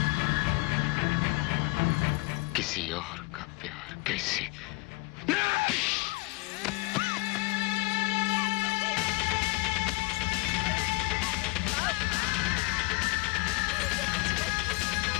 किसी और का प्यार कैसे?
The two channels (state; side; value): quieter; right; 24.0 dB